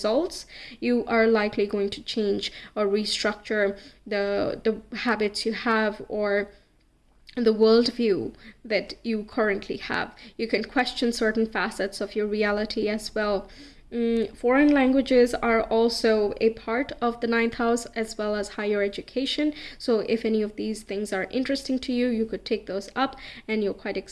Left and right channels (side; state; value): both; identical; correlation 1.00